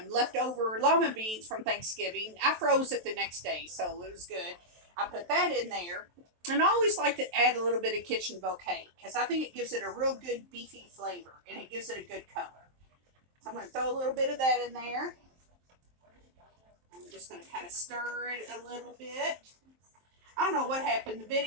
leftover lima beans from Thanksgiving. I froze it the next day, so it was good. I put that in there. And I always like to add a little bit of kitchen bouquet because I think it gives it a real good beefy flavor and it gives it a good color. So I'm going to throw a little bit of that in there. I'm just going to kind of stir it a little bit. I don't know what happened.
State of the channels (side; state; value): left; late; 23 ms